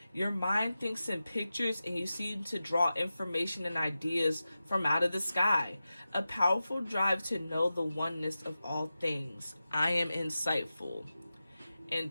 Your mind thinks in pictures and you seem to draw information and ideas from out of the sky. A powerful drive to know the oneness of all things. I am insightful. And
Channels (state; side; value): inverted; both; correlation -0.93